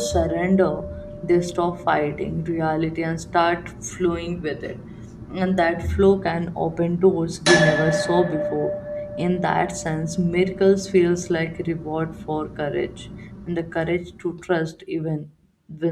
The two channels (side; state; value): both; identical; correlation 1.00